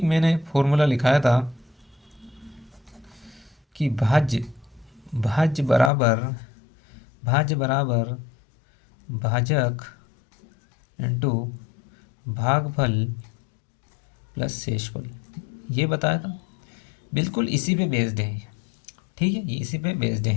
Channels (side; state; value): right; drops out; at 5.9 s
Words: मैंने फॉर्मूला लिखाया था कि भाज्य बराबर भाजक इंटू भागफल प्लस शेषफल, ये बताया था। बिल्कुल इसी पे बेस्ड है। ठीक है, ये इसी पे बेस्ड